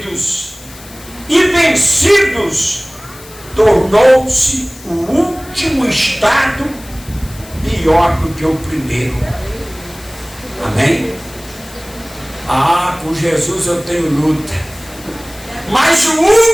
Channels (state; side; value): noise; left; hiss, 19 dB below the sound